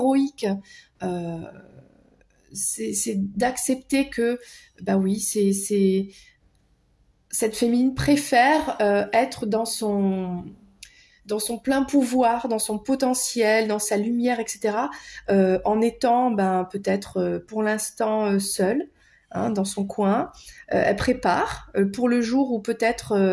c'est d'accepter que bah oui, cette féminine préfère être dans son plein pouvoir, dans son potentiel, dans sa lumière, etc., en étant peut-être pour l'instant seule, hein, dans son coin. Elle prépare pour le jour où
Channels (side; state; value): both; identical; correlation 1.00